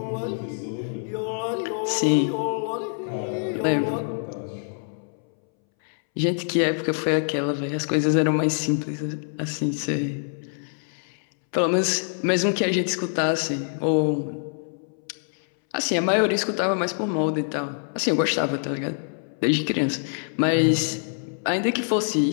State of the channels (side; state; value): right; silent; 62 dB below the other